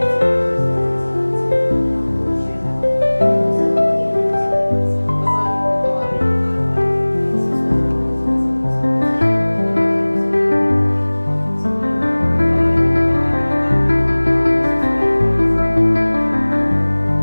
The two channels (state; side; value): inverted; both; correlation -1.00